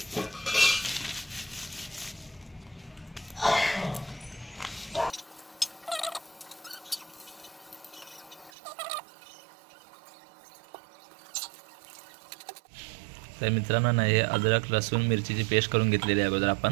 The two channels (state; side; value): drops out; left; at 8.5 s